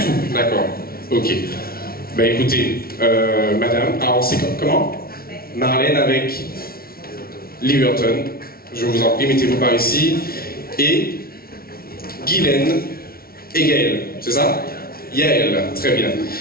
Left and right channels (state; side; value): late; right; 0.44 ms